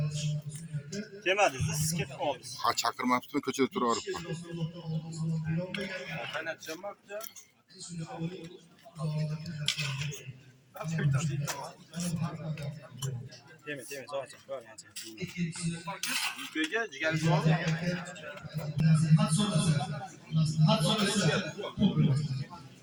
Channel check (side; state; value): both; identical; correlation 1.00